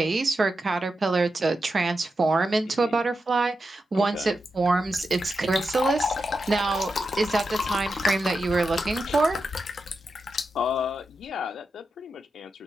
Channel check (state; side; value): normal; both; correlation 0.88